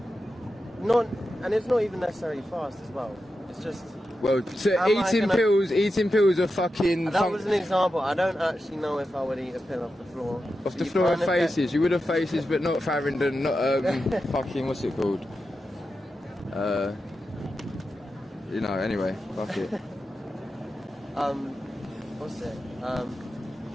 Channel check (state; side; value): normal; both; correlation 0.90